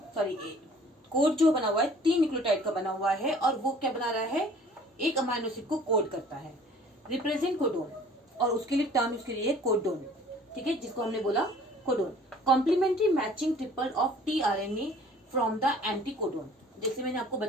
सॉरी कोड जो बना हुआ है 3 न्यूक्लियोटाइड का बना हुआ है, और वो क्या बना रहा है? एक अमाइनो एसिड को कोड करता है। रिप्रेजेंट कोडोन, और उसके लिए टर्म उसके लिए कोडोन। ठीक है, जिसको हमने बोला codon. Complementary matching triple of tRNA from the anticodon. जैसे मैंने आपको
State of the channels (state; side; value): normal; both; correlation 0.52